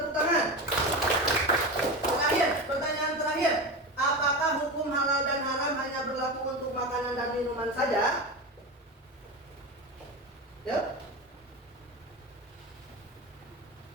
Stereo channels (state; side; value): normal; both; correlation 0.23